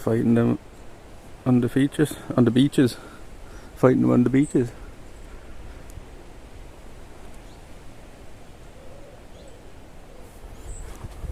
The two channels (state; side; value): identical; both; correlation 1.00